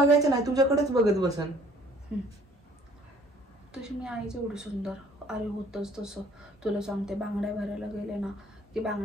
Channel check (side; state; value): both; normal; correlation 0.56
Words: नाही, तुझ्याकडेच बघत बसन. तशी मी आईच एवढी सुंदर. अरे होतच तसं. तुला सांगते, बांगड्या भरायला गेले ना की